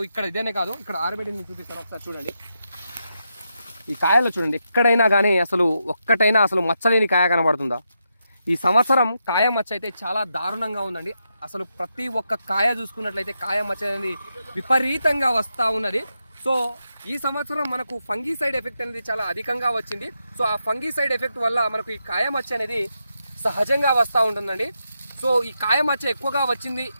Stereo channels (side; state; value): both; inverted; correlation -0.84